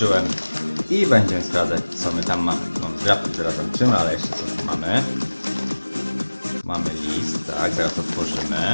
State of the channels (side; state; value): both; inverted; correlation -1.00